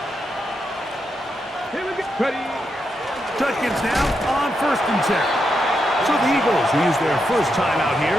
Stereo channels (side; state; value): both; normal; correlation 0.83